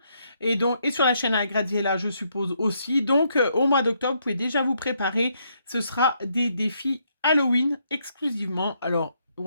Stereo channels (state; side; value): inverted; both; correlation -0.75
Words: et sur la chaîne à Graziella, je suppose aussi. Donc au mois d'octobre, vous pouvez déjà vous préparer. Ce sera des défis Halloween exclusivement. Alors